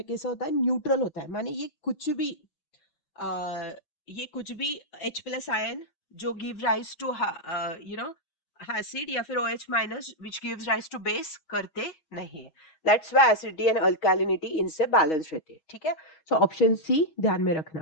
कैसा होता है, न्यूट्रल होता है, माने ये कुछ भी H प्लस आयन जो give rise to you know acid या फिर OH minus which gives rise to base करते नहीं है. That's why acidity and alkalinity इनसे बैलेंस रहती है. ठीक है, सो ऑप्शन सी ध्यान में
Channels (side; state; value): right; late; 6.3 ms